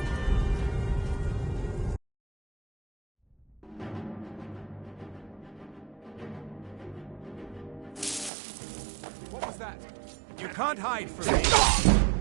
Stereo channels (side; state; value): left; drops out; at 8.3 s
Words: What was that? You can't hide from me.